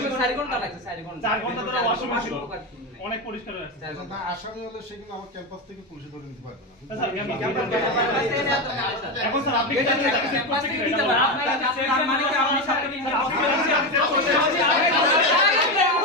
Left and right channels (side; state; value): both; normal; correlation 0.14